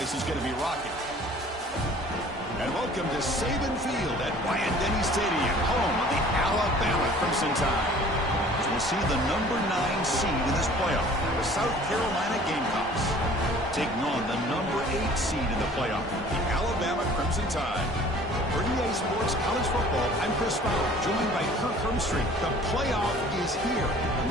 is going to be rocking. And welcome to Saban Field at Bryant-Denny Stadium, home of the Alabama Crimson Tide. As we'll see the number 9 seed in this playoff, the South Carolina Gamecocks, taking on the number 8 seed in the playoff, the Alabama Crimson Tide. For EA Sports College Football, I'm Chris Fowler, joined by Kirk Hermstreet. The playoff is here, and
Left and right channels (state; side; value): normal; both; correlation 0.50